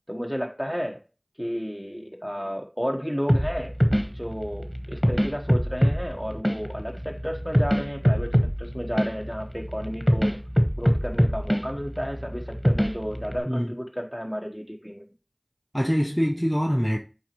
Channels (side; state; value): both; identical; correlation 1.00